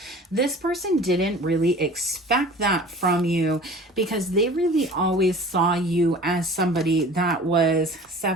This person didn't really expect that from you, because they really always saw you as somebody that was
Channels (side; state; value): both; normal; correlation 0.43